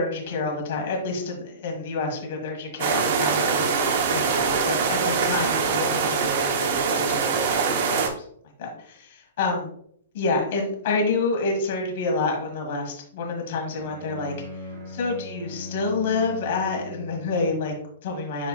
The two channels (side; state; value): both; inverted; correlation -0.33